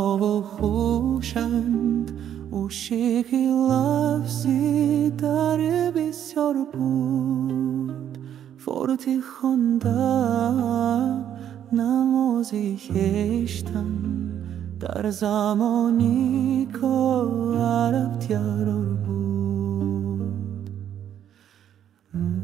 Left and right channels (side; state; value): left; quieter; 10.0 dB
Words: و خوشند عشقی لفظی در بسیار بود. فارتی خواندم نمازی کشتم در زمانی که عرب تیار بود.